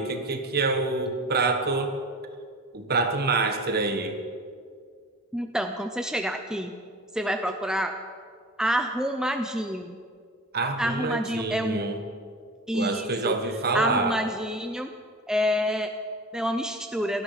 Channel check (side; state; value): both; normal; correlation 0.36